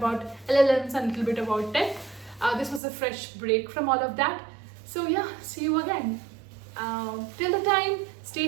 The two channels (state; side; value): drops out; left; at 2.8 s